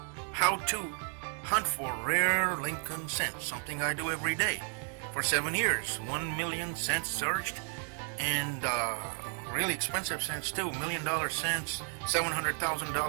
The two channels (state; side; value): quieter; left; 38.1 dB